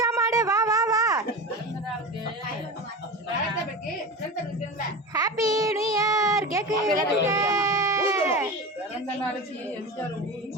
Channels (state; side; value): normal; both; correlation 0.27